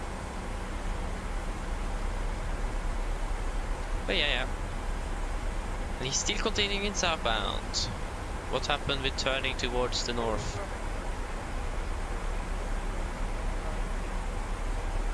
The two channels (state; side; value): identical; both; correlation 1.00